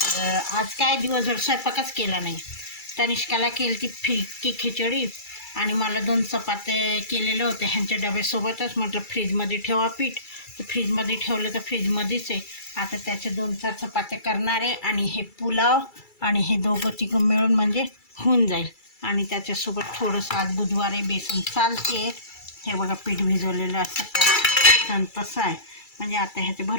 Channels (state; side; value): late; right; 2.3 ms